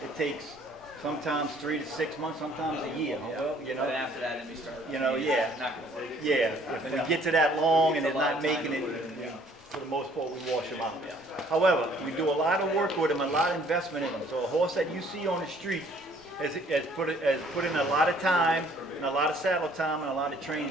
It takes sometimes 3 to 6 months, sometimes a year. Well, you know. And after that, then we start. You know, yeah. It's not gonna work. Yeah, if we get to that long and It's they're a lot not of time making to it, put it in, yeah. for the most part, we wash them out. However, we do a lot of work with them, a lot of investment in them. So a horse that you see on the street has put in a lot of time and a lot of saddle time and a lot of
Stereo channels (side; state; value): both; normal; correlation 0.59